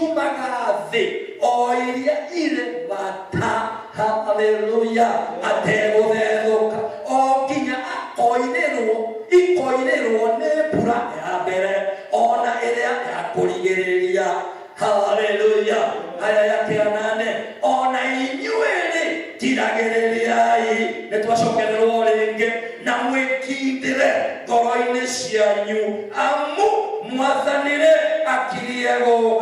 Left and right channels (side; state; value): both; identical; correlation 1.00